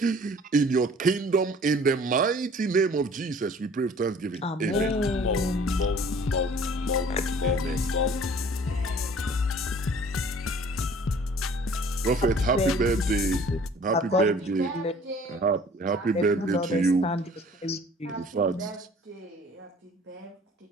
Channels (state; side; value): normal; both; correlation 0.51